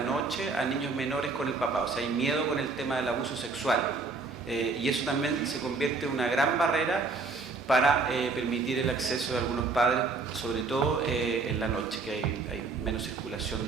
a niños menores con el papá. O sea, hay miedo con el tema del abuso sexual. Y eso también se convierte en una gran barrera para permitir el acceso de algunos padres, sobre todo en la noche, que hay menos circulación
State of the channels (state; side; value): quieter; left; 4.1 dB